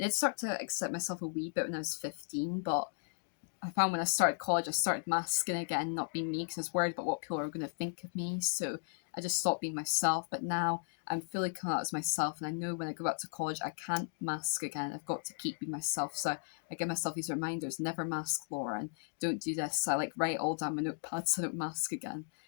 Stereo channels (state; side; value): silent; right; digital silence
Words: did start to accept myself a wee bit when I was 15, but I found when I started college, I started masking again, not being me, because I was worried about what people are going to think of me. So I just stopped being myself. But now I'm fully coming out as myself, and I know when I go back to college, I can't mask again. I've got to keep being myself. So I give myself these reminders: never mask, Laura, and don't do this. I like write all down my notepads so I don't mask again.